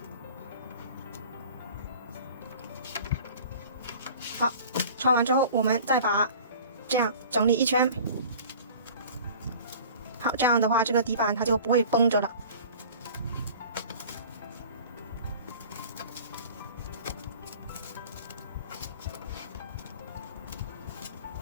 好，穿完之后，我们再把这样整理一圈。好，这样的话，这个底板它就不会绷着了。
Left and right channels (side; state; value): both; inverted; correlation -0.43